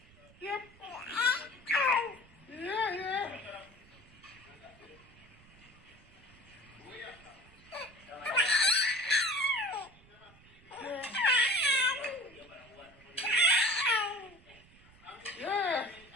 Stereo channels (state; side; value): noise; right; rumble, 25 dB below the sound